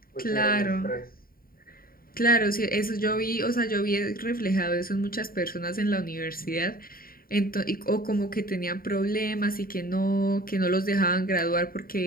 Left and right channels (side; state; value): right; late; 0.42 ms